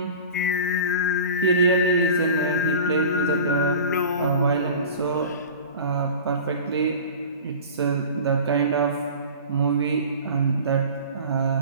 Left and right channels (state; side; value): inverted; both; correlation -0.37